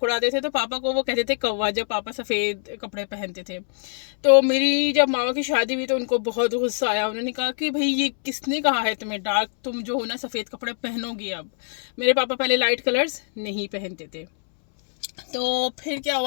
उड़ाते थे। तो पापा को वो कहते थे कौवा, जब पापा सफ़ेद कपड़े पहनते थे। तो मेरी जब मामा की शादी हुई तो उनको बहुत गुस्सा आया। उन्होंने कहा कि भाई ये किसने कहा है तुम्हें डार्क, तुम जो हो ना सफ़ेद कपड़े पहनोगी अब। मेरे पापा पहले लाइट कलर्स नहीं पहनते थे। तो फिर क्या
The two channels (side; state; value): right; silent; 63 dB below the other